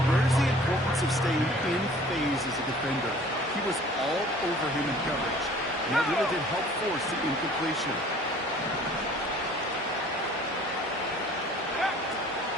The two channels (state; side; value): normal; both; correlation 0.50